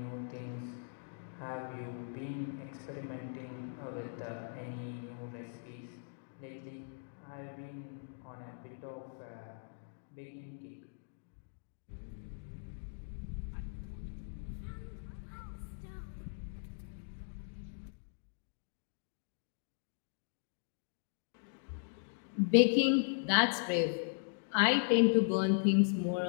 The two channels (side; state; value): right; silent; digital silence